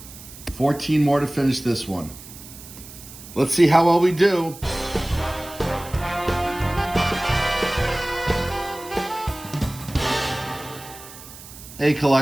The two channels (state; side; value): noise; right; hiss, 16 dB below the sound